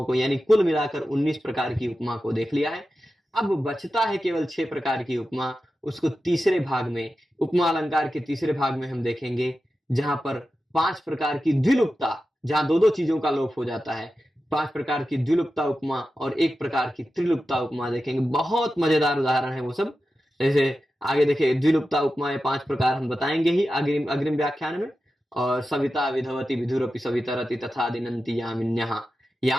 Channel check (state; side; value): normal; both; correlation 0.92